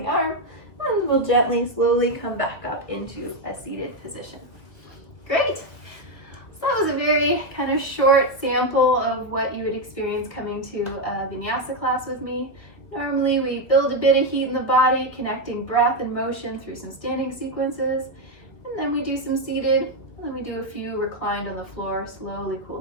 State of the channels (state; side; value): late; right; 1.7 ms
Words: arm, and we'll gently, slowly come back up into a seated position. Great. So that was a very kind of short sample of what you would experience coming to a Vinyasa class with me. Normally we build a bit of heat in the body, connecting breath and motion through some standing sequences, and then we do some seated, and then we do a few reclined on the floor, slowly